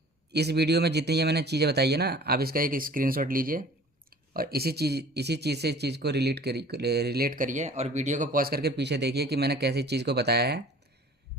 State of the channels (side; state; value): both; normal; correlation 0.47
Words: इस वीडियो में जितनी ये मैंने चीज़ें बताई है ना, आप इसका एक स्क्रीनशॉट लीजिए और इसी चीज़ से इस चीज़ को रिलेट करिए और वीडियो को पॉज करके पीछे देखिए कि मैंने कैसी चीज़ को बताया है।